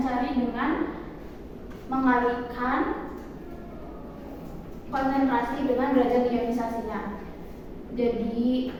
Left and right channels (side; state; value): both; identical; correlation 1.00